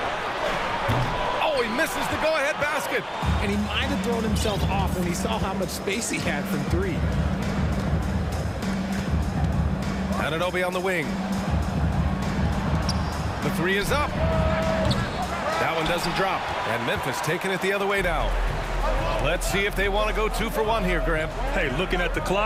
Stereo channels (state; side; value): identical; both; correlation 1.00